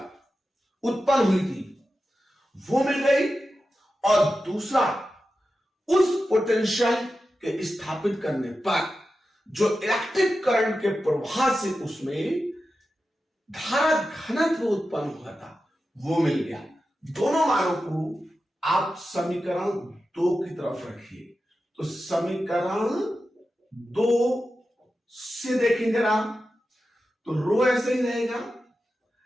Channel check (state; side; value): normal; both; correlation 0.92